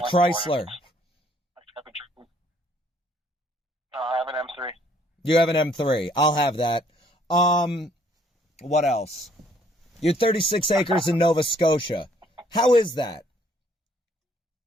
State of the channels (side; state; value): both; normal; correlation 0.64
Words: Chrysler? I have an M3. You have an M3. I'll have that. What else? You're 36 acres in Nova Scotia. How is that?